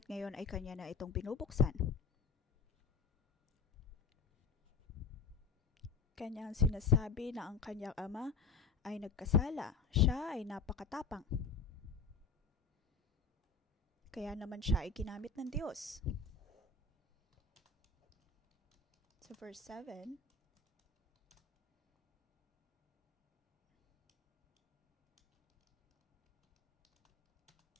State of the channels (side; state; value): right; quieter; 5.0 dB